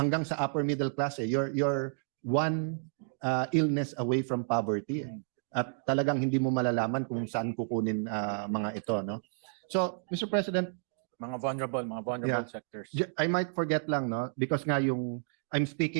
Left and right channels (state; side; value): silent; left; digital silence